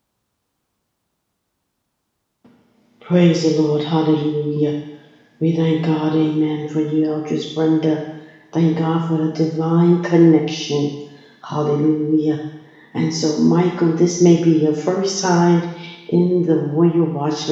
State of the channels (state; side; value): identical; both; correlation 1.00